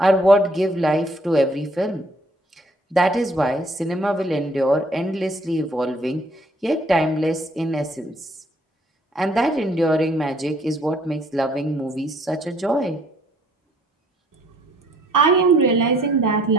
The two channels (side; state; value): both; normal; correlation 0.62